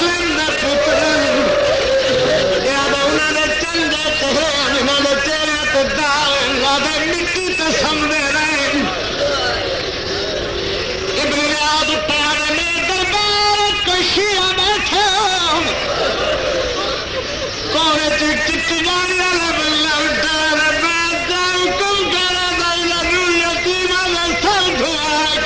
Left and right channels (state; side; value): identical; both; correlation 1.00